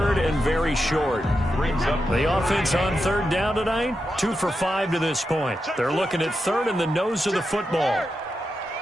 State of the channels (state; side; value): normal; both; correlation 0.88